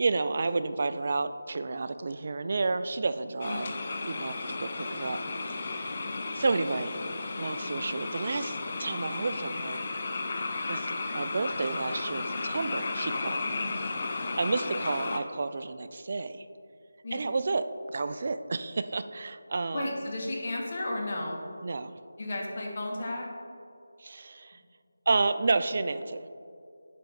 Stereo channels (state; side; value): inverted; both; correlation -0.92